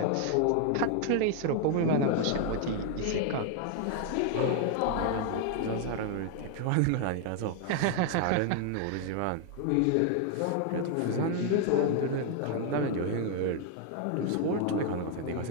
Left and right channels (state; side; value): different; both; correlation 0.00